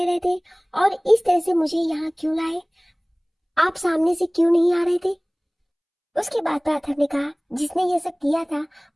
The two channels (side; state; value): both; identical; correlation 1.00